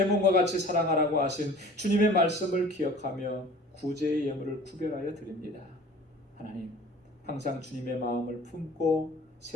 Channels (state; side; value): normal; both; correlation 0.46